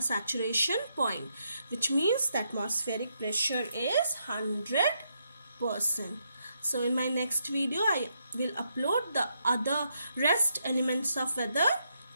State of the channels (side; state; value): both; inverted; correlation -0.78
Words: saturation point, which means the atmospheric pressure is 100%. So in my next video, I will upload the other rest elements of weather,